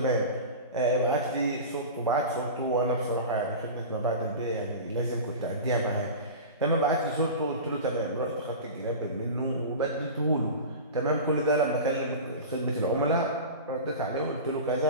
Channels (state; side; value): inverted; both; correlation -0.31